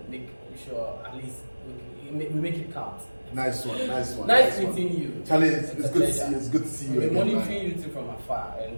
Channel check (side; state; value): both; inverted; correlation -1.00